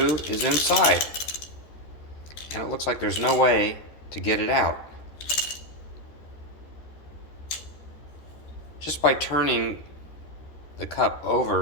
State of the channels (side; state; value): right; late; 13 ms